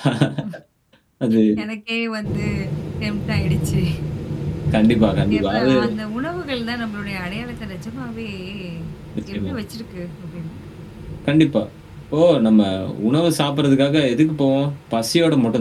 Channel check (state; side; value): identical; both; correlation 1.00